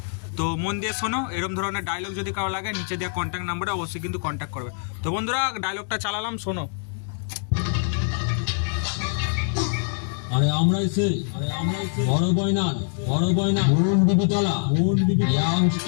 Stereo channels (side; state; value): right; silent; 62 dB below the other